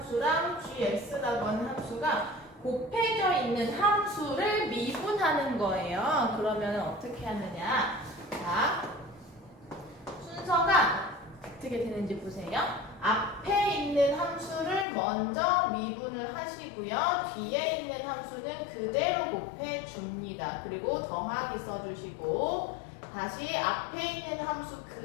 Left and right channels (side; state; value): right; drops out; at 14.9 s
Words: gx라고 하는 함수가 곱해져 있는 함수를 미분하는 거예요. 그러면 어떻게 하느냐? 자, 순서가 어떻게 되는지 보세요. 앞에 있는 함수를 먼저 미분을 하시고요. 뒤에 있는 함수는 그대로 곱해줍니다. 그리고 더하기 써주시고 다시 앞에 있는 함수